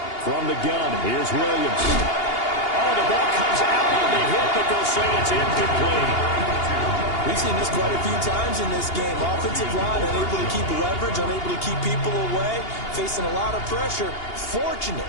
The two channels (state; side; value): late; right; 2.8 ms